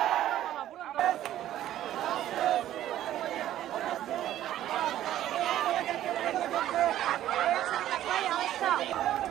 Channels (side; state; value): left; quieter; 12.6 dB